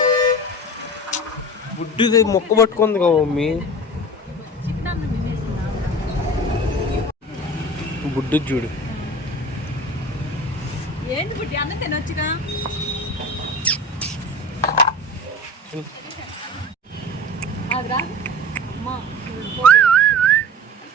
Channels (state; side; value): normal; both; correlation 0.35